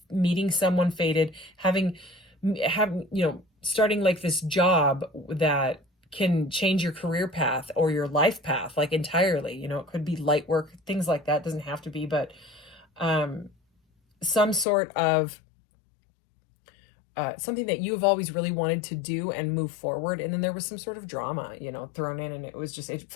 meeting someone fated, having starting like this job that can change your career path or your life path, like entirely. You know, it could be light work, things like that. Doesn't have to be, but some sort of something that you've always really wanted to do and move forward. And then there was some sort of drama, thrown in, and it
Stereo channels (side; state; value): right; drops out; at 14.7 s